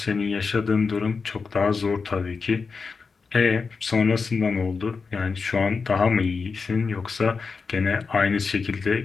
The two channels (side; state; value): right; quieter; 4.9 dB